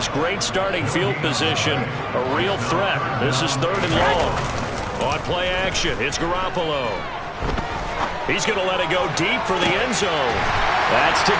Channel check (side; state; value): both; identical; correlation 1.00